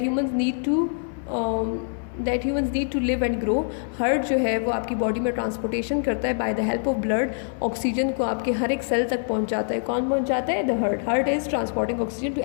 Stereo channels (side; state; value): right; silent; 62 dB below the other